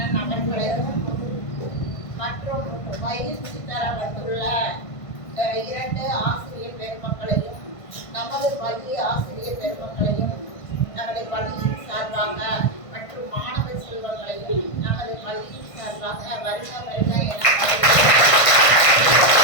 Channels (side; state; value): right; late; 1.5 ms